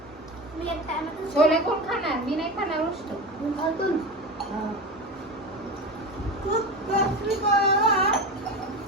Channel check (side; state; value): both; normal; correlation 0.25